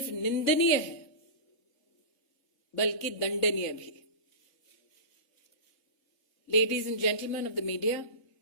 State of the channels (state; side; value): late; right; 3.3 ms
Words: निंदनीय है बल्कि दंडनीय भी। Ladies and gentlemen of the media,